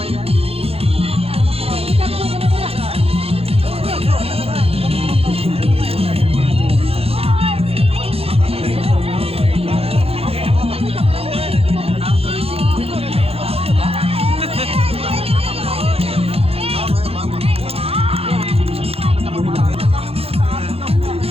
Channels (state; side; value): late; left; 0.29 ms